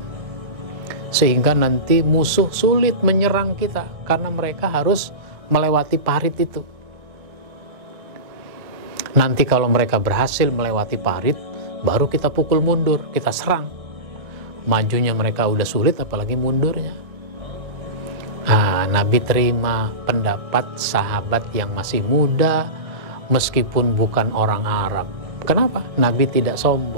Sehingga nanti musuh sulit menyerang kita, karena mereka harus melewati parit itu. Nanti kalau mereka berhasil melewati parit, baru kita pukul mundur, kita serang. Majunya mereka udah sulit, apalagi mundurnya. Nabi terima pendapat sahabat yang masih muda, meskipun bukan orang Arab. Kenapa? Nabi tidak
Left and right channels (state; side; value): late; left; 1.7 ms